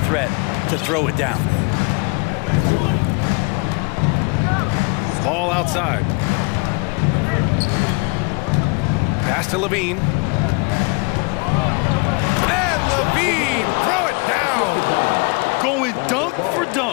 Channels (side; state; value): right; quieter; 30.8 dB